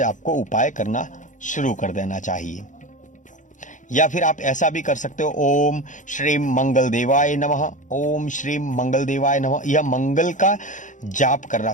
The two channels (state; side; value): late; right; 0.37 ms